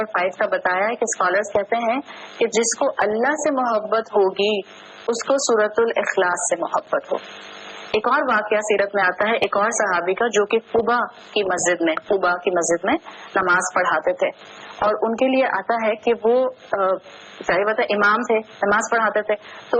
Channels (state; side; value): identical; both; correlation 1.00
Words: 5 کا بتایا ہے کہ اسکالرس کہتے ہیں کہ جس کو اللہ سے محبت ہوگی اس کو سورۃ الاخلاص سے محبت ہوگی. ایک اور واقعہ سیرت میں آتا ہے ایک اور صحابی کا جو کہ قباء کی مسجد میں نماز پڑھاتے تھے اور ان کے لیے آتا ہے کہ وہ ظاہر بات ہے امام تھے، نماز پڑھاتے تھے، تو